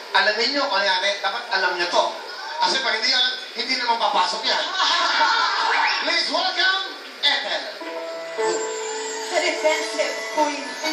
alamin nyo kung yan, dapat alam nyo to. Kasi pag hindi alam, hindi naman papasok yan. Please welcome, Ethel. The defensive queen.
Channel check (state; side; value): identical; both; correlation 1.00